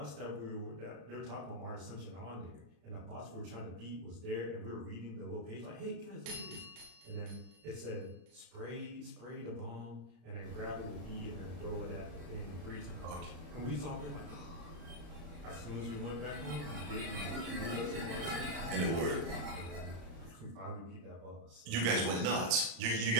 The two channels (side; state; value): left; late; 35 ms